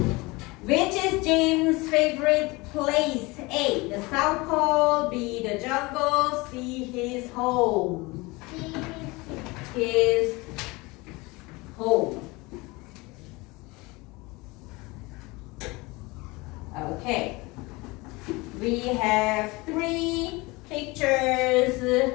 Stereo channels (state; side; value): quieter; right; 23.8 dB